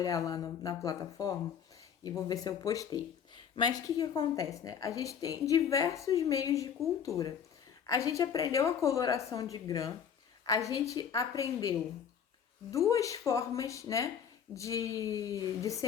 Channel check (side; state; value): right; quieter; 7.9 dB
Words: lá na plataforma e vou ver se eu postei. Mas o que acontece, né? A gente tem diversos meios de cultura. A gente aprendeu a coloração de grã, a gente aprendeu duas formas, né, de